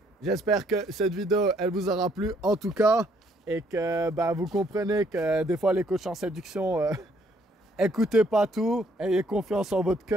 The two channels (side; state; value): both; normal; correlation 0.67